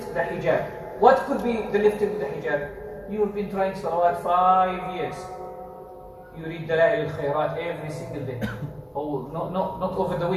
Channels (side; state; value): both; identical; correlation 1.00